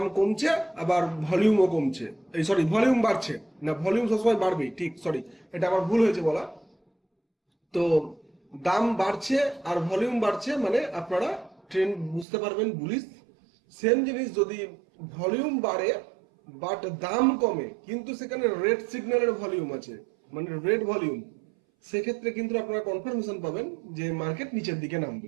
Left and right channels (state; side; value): drops out; left; at 12.2 s